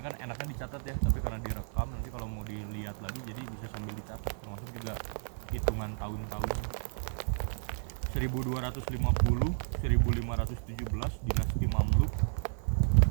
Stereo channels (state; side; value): silent; left; digital silence